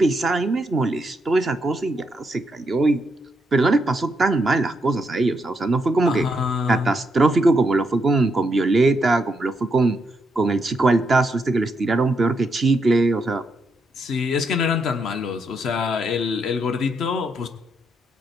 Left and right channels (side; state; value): both; normal; correlation 0.79